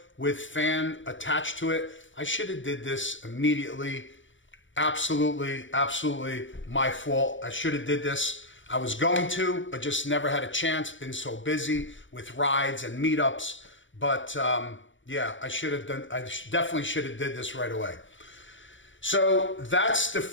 with fan attached to it. I should have did this immediately. Absolutely my fault. I should have did this. I was going to, but just never had a chance. Been so busy with rides and meetups. But yeah, I definitely should have did this right away. So that's the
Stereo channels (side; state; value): right; late; 0.56 ms